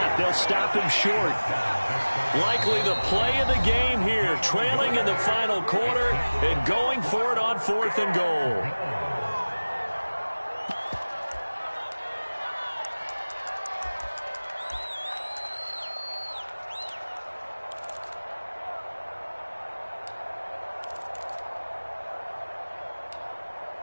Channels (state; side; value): inverted; both; correlation -1.00